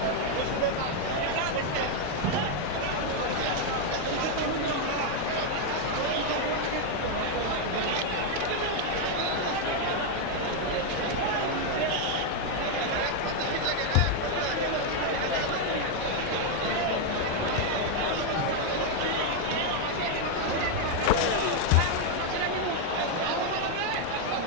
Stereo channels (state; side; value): different; both; correlation 0.01